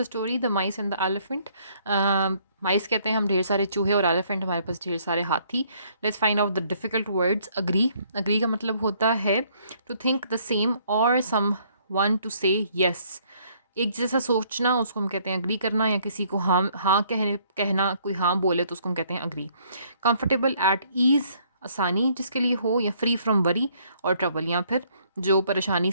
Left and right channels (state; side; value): inverted; both; correlation -0.64